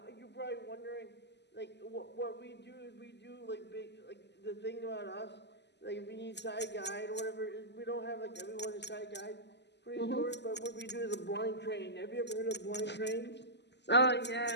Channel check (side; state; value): right; late; 0.50 ms